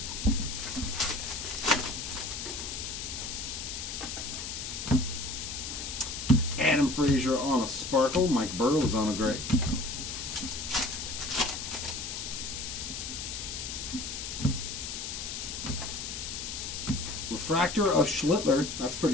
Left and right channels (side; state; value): left; noise; hiss, 6 dB below the sound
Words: Adam Frazier on a sparkle. Mike Burrows on a gray. Refractor of Schlittler. That's